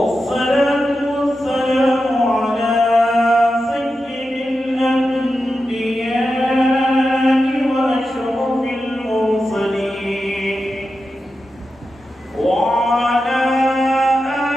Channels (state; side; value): normal; both; correlation 0.90